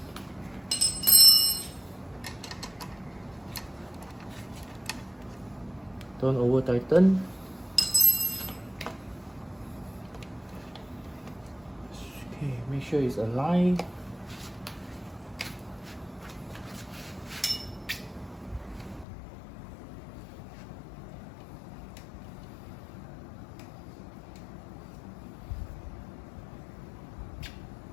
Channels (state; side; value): drops out; right; at 19.1 s